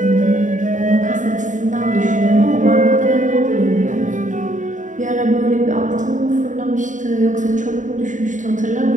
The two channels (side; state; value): left; late; 0.36 ms